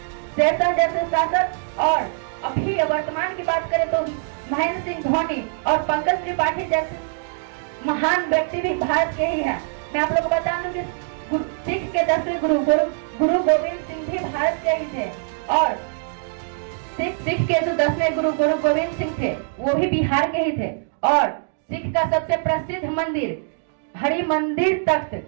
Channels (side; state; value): left; silent; digital silence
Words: जैसे शासक और अभी वर्तमान की बात करें तो महेंद्र सिंह धोनी और पंकज त्रिपाठी जैसे महान व्यक्ति भी भारत के ही हैं। मैं आप लोगों को बता दूं कि सिख के 10वें गुरु गोविंद सिंह भी भारत के ही थे और सिख के जो 10वें गुरु गोविंद सिंह थे वो भी बिहार के ही थे। और सिख का सबसे प्रसिद्ध मंदिर हरि मंदिर तख्त